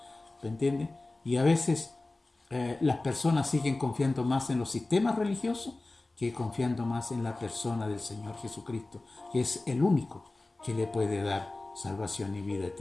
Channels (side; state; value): right; quieter; 3.0 dB